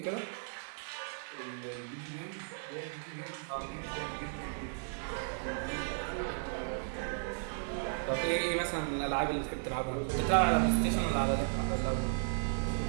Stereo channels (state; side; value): silent; left; 54 dB below the other